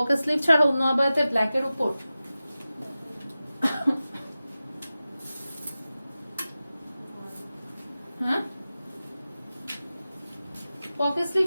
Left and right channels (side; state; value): both; inverted; correlation -0.95